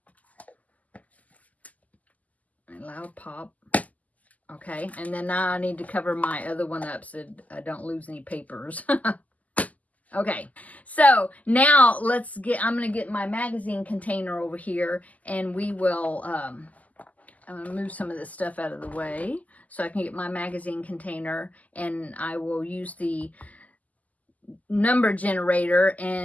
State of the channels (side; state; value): right; late; 0.076 ms